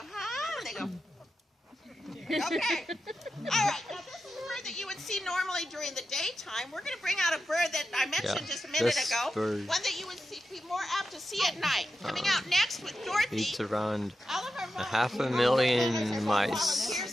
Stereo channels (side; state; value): both; normal; correlation 0.90